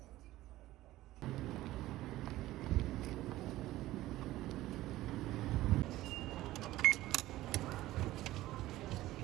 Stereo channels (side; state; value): left; quieter; 16.2 dB